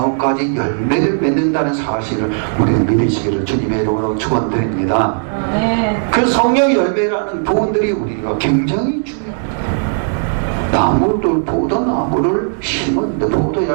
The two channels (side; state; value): left; silent; digital silence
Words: 열매를 맺는다는 사실을 우리는 믿으시기를 주님의 이름으로 축원드립니다. 그 성령의 열매라는 부분들이 우리가 굉장히 중요합니다. 나무들, 포도나무를 심었는데 포도